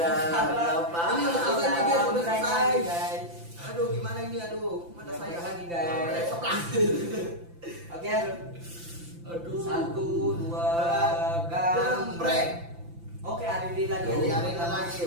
Apa? Ini udah selesai nih, guys, udah selesai. guys. Aduh, gimana ini? Aduh, mata saya Lagi guys. Oke. Aduh. 1, 2, Gambreng. Oke, Riri lagi. Jadi hari ini lagi,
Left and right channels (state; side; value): late; left; 5.9 ms